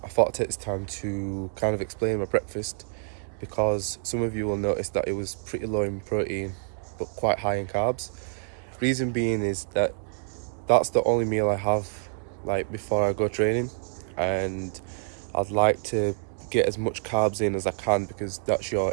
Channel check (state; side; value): silent; left; digital silence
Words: thought I'd take this time to kind of explain my breakfast because some of you will notice that it was pretty low in protein but quite high in carbs. Reason being is that that's the only meal I have like before I go training, and I'd like to get as much carbs in as I can because that's